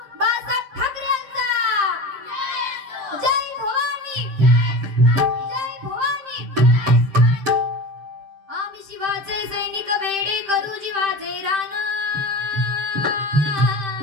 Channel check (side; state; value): left; late; 7.6 ms